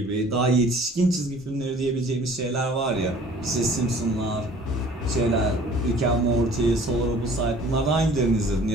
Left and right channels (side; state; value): both; normal; correlation 0.50